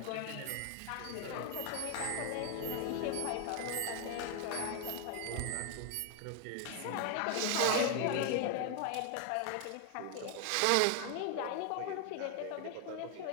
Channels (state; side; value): different; both; correlation 0.00